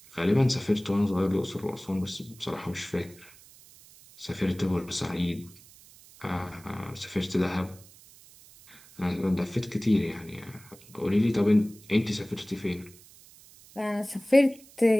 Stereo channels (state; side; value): noise; right; hiss, 23 dB below the sound